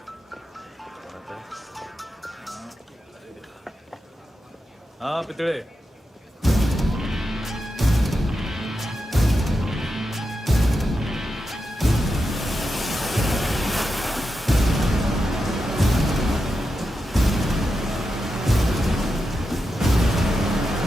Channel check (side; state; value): both; normal; correlation 0.88